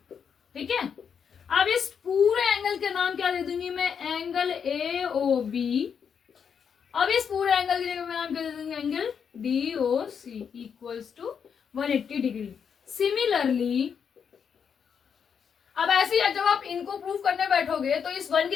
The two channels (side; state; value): right; quieter; 7.1 dB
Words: ठीक है, अब इस पूरे एंगल के नाम क्या दे दूंगी मैं, एंगल ए ओ बी। अब इस पूरे एंगल की जगह मैं नाम क्या दे दूंगी, angle D O C equals to 180 degree. Similarly अब ऐसे ही जब आप इनको प्रूव करने बैठोगे, तो इस 1 की